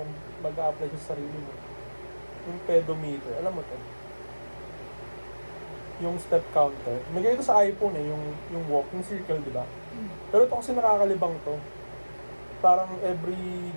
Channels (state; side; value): inverted; both; correlation -1.00